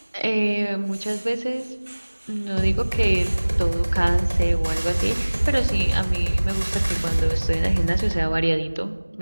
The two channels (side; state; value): both; inverted; correlation -1.00